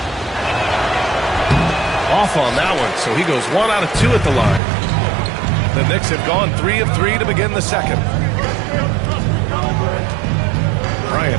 Off on that one, so he goes 1 out of 2 at the line. The Knicks have gone 3 of 3 to begin the second.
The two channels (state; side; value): drops out; left; at 4.6 s